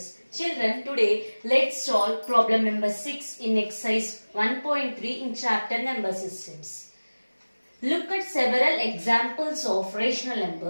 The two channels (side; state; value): both; inverted; correlation -1.00